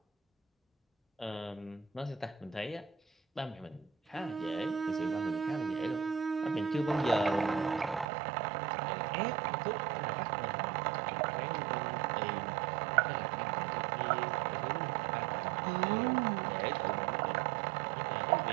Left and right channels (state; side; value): drops out; left; at 8.1 s